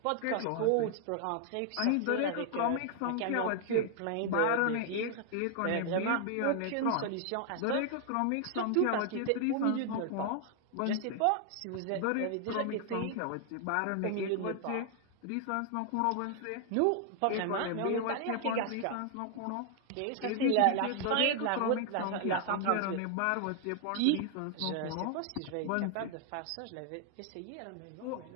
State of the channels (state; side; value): different; both; correlation 0.00